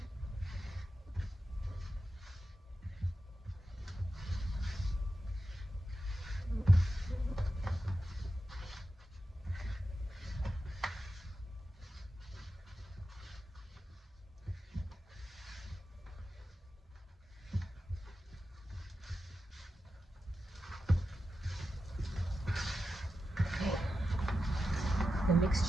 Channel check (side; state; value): both; normal; correlation 0.91